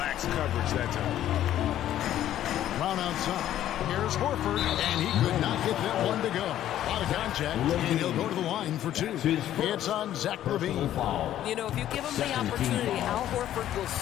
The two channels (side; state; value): right; quieter; 12.1 dB